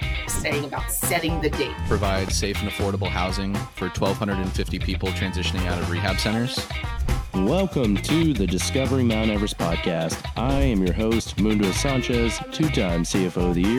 Saying about setting the date. Provide safe and affordable housing for 1,250 people transitioning out of rehab centers. Welcome to the Discovering Mount Everest podcast. I am your host, Mundo Sanchez, two-time CFO of the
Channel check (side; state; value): both; identical; correlation 1.00